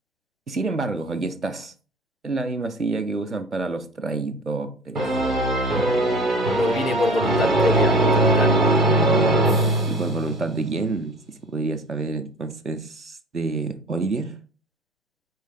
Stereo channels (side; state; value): both; normal; correlation 0.41